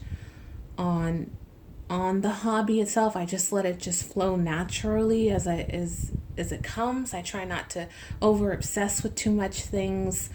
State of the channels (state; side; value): identical; both; correlation 1.00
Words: on the hobby itself. I just let it just flow naturally as it comes. I try not to over obsess with too much things,